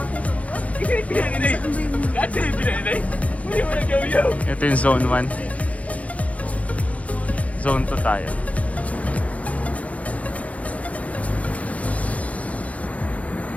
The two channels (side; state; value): right; late; 0.067 ms